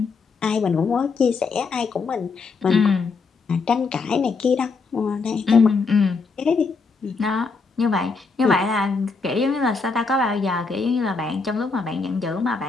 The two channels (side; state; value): right; quieter; 4.5 dB